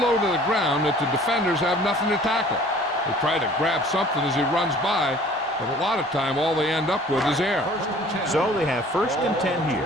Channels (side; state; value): both; normal; correlation 0.51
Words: to the ground that the defenders have nothing to tackle. They try to grab something as he runs by, but a lot of time all they end up with is air. So they have first and 10 here.